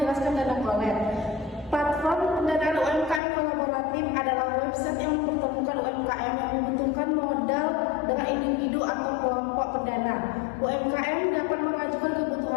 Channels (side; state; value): right; drops out; at 3.2 s